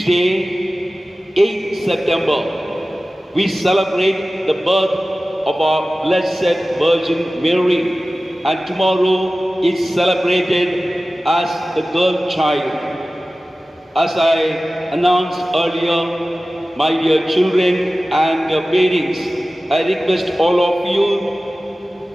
8th September, we celebrate the birth of our Blessed Virgin Mary. And tomorrow is celebrated as the girl child. As I announced earlier, my dear children and parents, I request all of you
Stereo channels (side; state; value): both; normal; correlation 0.96